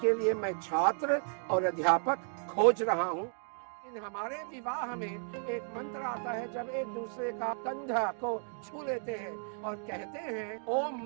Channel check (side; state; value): left; silent; 55 dB below the other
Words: लिए मैं छात्र और अध्यापक खोज रहा हूँ। इन हमारे विवाह में एक मंत्र आता है, जब एक दूसरे का कंधा को छू लेते हैं और कहते हैं ओम